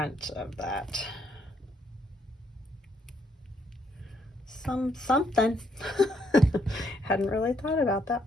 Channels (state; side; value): normal; both; correlation 0.73